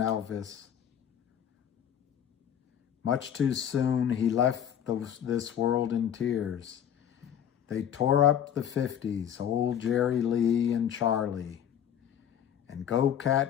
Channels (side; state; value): right; quieter; 9.4 dB